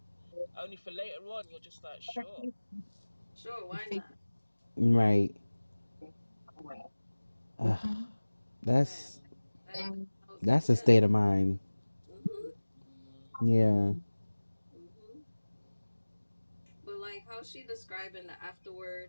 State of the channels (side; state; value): both; inverted; correlation -1.00